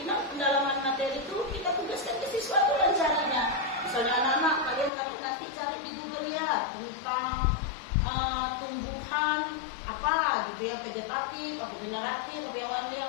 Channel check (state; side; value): drops out; right; at 4.9 s